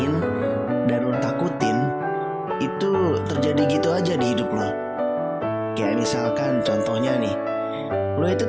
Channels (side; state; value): both; identical; correlation 1.00